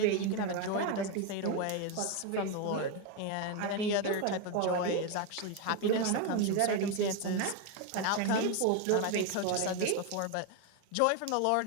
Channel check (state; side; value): different; both; correlation 0.02